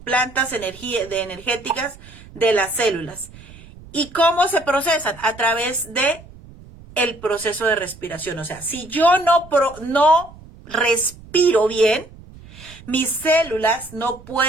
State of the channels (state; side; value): noise; right; rumble, 20 dB below the sound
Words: energéticas de las células. ¿Y cómo se procesan? A través de el proceso de respiración. O sea, si yo no respiro bien, mis células no